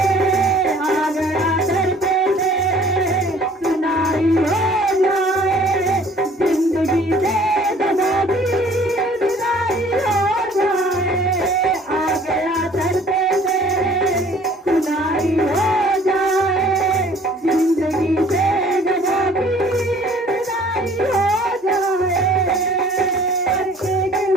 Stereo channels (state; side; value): normal; both; correlation 0.53